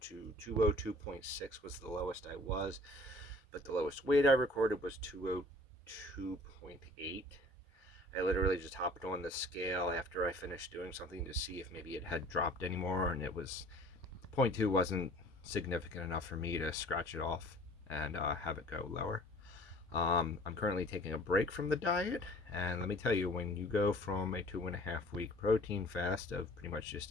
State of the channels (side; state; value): both; normal; correlation 0.49